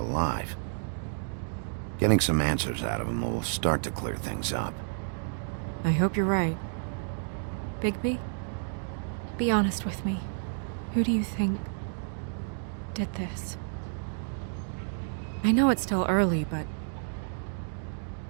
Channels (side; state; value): left; silent; digital silence